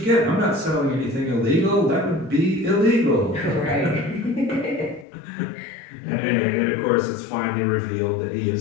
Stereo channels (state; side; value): drops out; right; at 5.1 s